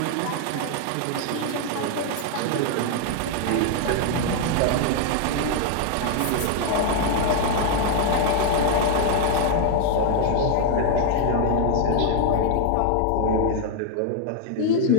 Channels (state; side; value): different; both; correlation 0.00